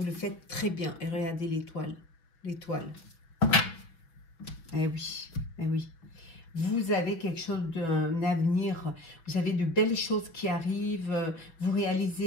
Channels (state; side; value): late; right; 6.1 ms